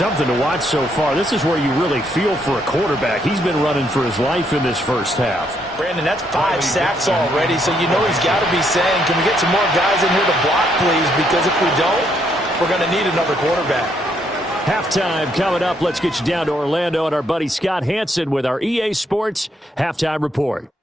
to watch so far. This is where you really feel for a quarterback. He's been running for his life in this first half. Brandon, that's 5 sacks already, so you know he's got to be saying, can we get some more guys in here to block, please? Because if we don't, we're going to need another quarterback. Halftime coming up. Let's get you down to Orlando and our buddy Scott Hansen with our EA Sports Halftime Report.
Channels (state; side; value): normal; both; correlation 0.73